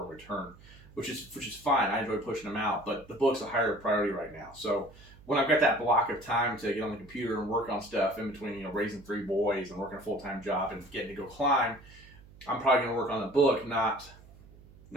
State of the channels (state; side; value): noise; right; hum, 22 dB below the sound